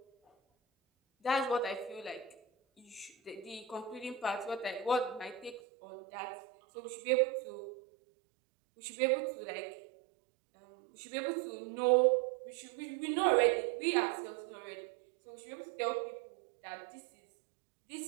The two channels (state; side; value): drops out; left; at 5.6 s